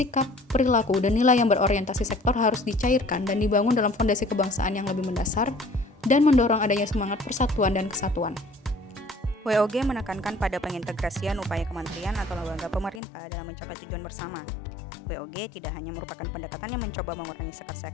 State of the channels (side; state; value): right; drops out; at 13.0 s